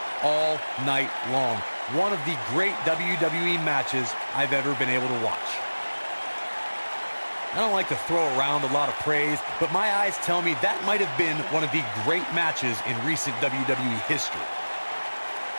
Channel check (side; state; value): both; inverted; correlation -1.00